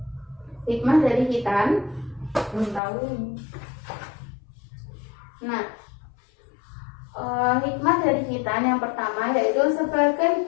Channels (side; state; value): right; drops out; at 2.8 s